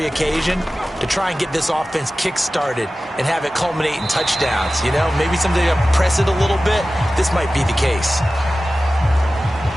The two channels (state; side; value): normal; both; correlation 0.95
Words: occasion to try and get this offense kick-started and have it culminate in touchdowns. You know, maybe someday to press it a little bit. This might be the case.